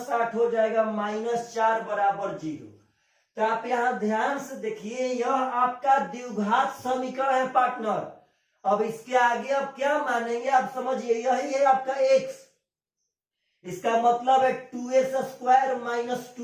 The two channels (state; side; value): identical; both; correlation 1.00